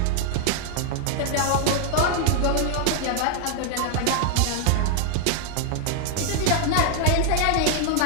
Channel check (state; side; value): different; both; correlation 0.00